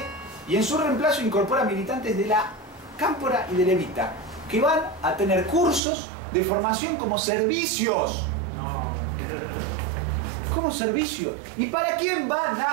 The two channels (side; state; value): left; drops out; at 5.8 s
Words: y en su reemplazo incorpora militantes de la Cámpora y del Evita, que van a tener cursos de formación como servicios. Como servicio. ¿Y para quién van